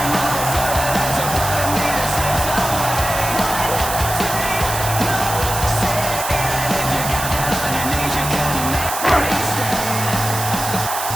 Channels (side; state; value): right; noise; hiss, 5 dB below the sound